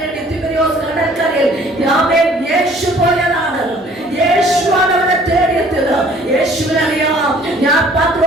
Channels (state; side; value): normal; both; correlation 0.55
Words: തിബരിയോസ് കടൽക്കരയിൽ യേശു പോയതാണ്. യേശുവാണ് അവനെ തേടിയെത്തിയത്. യേശുവിനറിയാം ഞാൻ